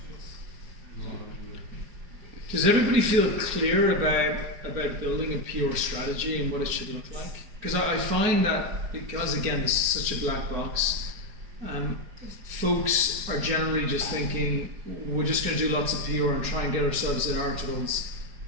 good. Does everybody feel clear about building a pure strategy and what it should look like? Because I find that, because again, this is such a black box, folks are generally just thinking, we're just going to do lots of PR and try and get ourselves in articles,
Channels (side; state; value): left; late; 4.9 ms